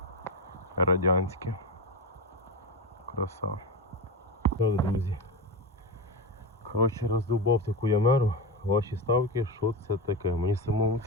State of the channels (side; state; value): both; normal; correlation 0.17